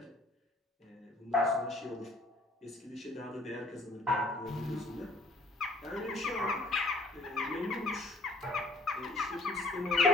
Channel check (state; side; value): normal; both; correlation 0.57